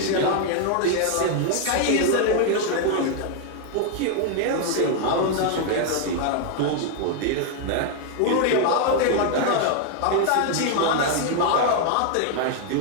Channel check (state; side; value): different; both; correlation 0.00